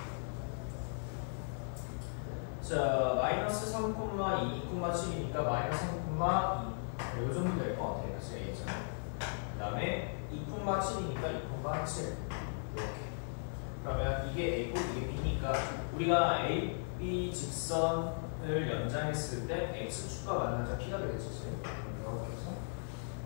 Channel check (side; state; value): right; silent; 53 dB below the other